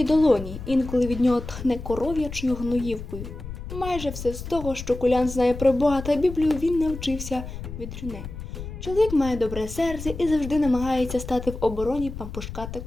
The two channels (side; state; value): left; noise; rumble, 9 dB below the sound